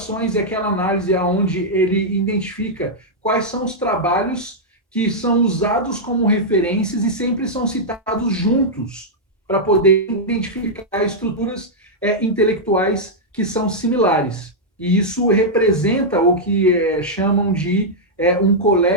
é aquela análise onde ele identifica quais são os trabalhos que são usados como referências e sempre são citados juntos, para poder identificar estruturas intelectuais que são similares. E isso representa o que chamam de um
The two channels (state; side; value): normal; both; correlation -0.06